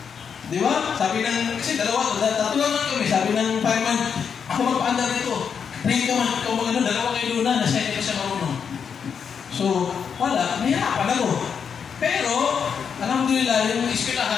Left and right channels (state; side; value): quieter; right; 6.9 dB